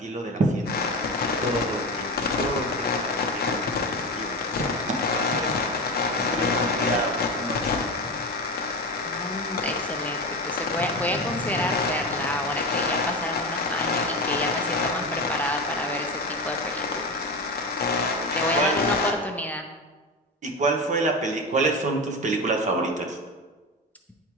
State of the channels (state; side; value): normal; both; correlation 0.22